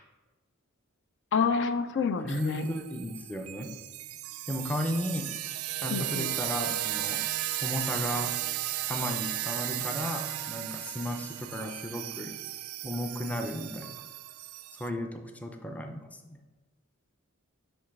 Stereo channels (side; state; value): both; normal; correlation 0.33